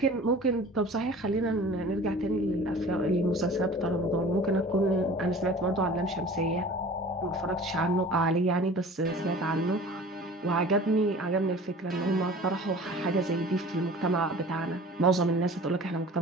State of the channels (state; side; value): normal; both; correlation 0.43